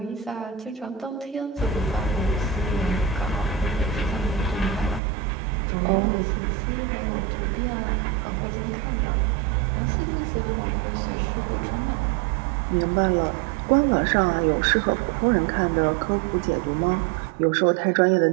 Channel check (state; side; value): drops out; left; at 5.0 s